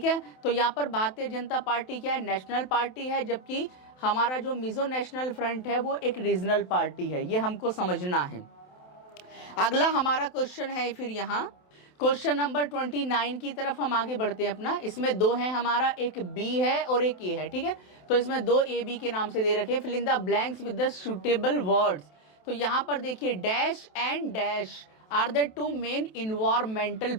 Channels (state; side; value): late; right; 27 ms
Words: है, तो यहाँ पर Bharatiya Janata party क्या है? National party है, जबकि हमारा जो मिजो नेशनल फ्रंट है वो एक रीजनल पार्टी है। ये हमको समझना है। अगला हमारा क्वेश्चन है फिर यहाँ क्वेश्चन नंबर 29 की तरफ हम आगे बढ़ते हैं अपना। इसमें दो हैं हमारा, एक बी है और एक ए है। ठीक है, तो इसमें दो ए बी के नाम से दे रखे हैं। Fill in the blanks with the suitable words. तो यहाँ पर देखिए dash and dash are the two main environmental